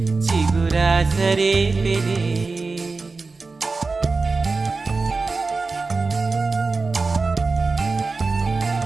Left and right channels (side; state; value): left; quieter; 4.0 dB